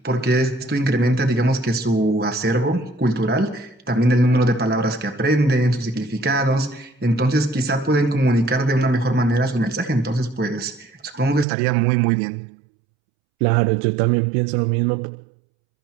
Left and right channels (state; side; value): drops out; left; at 11.5 s